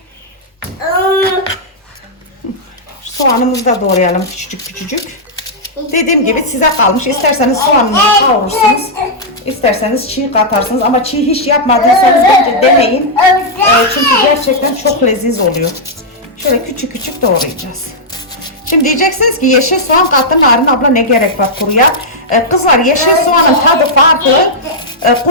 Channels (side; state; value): both; normal; correlation -0.07